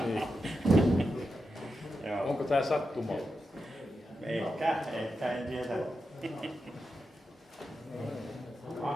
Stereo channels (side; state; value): both; normal; correlation 0.88